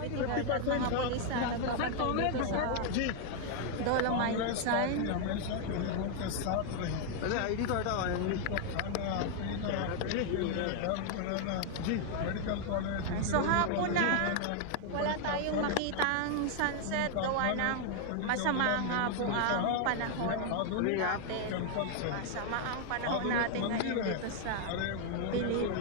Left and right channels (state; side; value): different; both; correlation 0.00